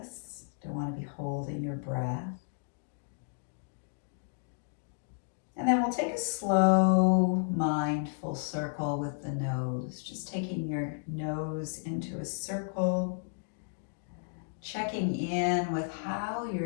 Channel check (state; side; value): silent; right; digital silence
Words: Don't want to be holding your breath. And then we'll take a slow, mindful circle with the nose. Just taking your nose into a circle, checking in with how